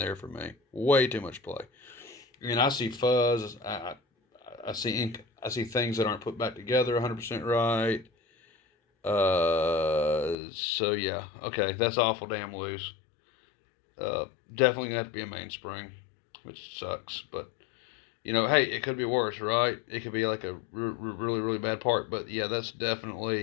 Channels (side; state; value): right; drops out; at 10.4 s